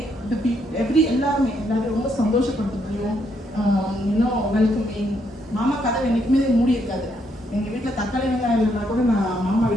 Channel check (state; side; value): normal; both; correlation 0.75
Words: the people எல்லாரும் ரொம்ப சந்தோஷப்படுத்தணும். Welcoming. மாமா கதவு என்னைக்குமே மூடி இருக்காது. எங்கள் வீட்டில் தக்காளி வெங்காயம் இல்லைன்னா கூட நான் மாமா